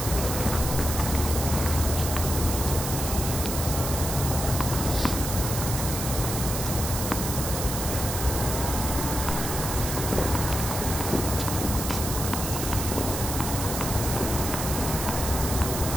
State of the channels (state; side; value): noise; right; hiss, 4 dB below the sound